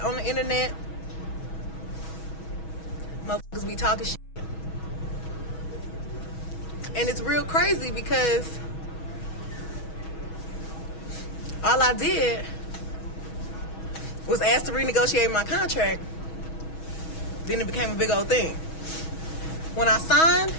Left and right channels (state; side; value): late; right; 6.2 ms